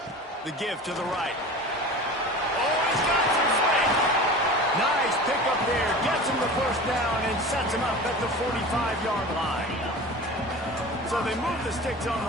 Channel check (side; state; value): both; normal; correlation 0.35